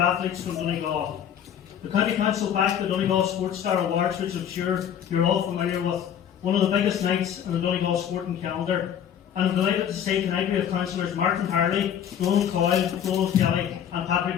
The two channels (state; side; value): quieter; right; 9.2 dB